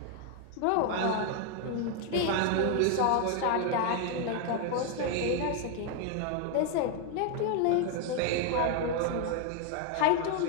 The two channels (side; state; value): both; different; correlation 0.00